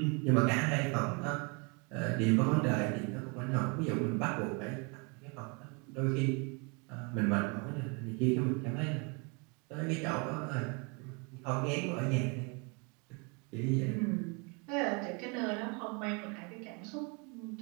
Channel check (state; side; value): quieter; left; 32.2 dB